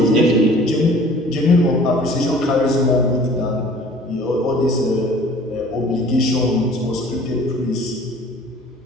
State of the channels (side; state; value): both; normal; correlation 0.49